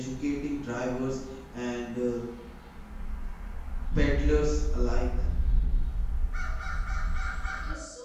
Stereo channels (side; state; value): both; identical; correlation 1.00